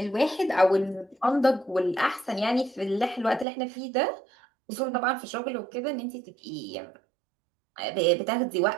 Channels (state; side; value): drops out; left; at 3.5 s